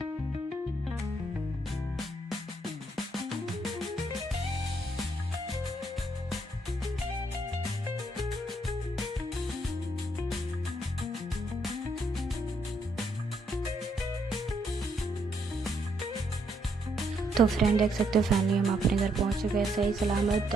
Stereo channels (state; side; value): normal; both; correlation 0.74